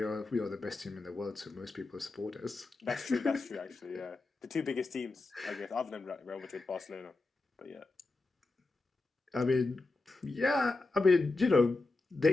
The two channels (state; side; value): quieter; right; 3.3 dB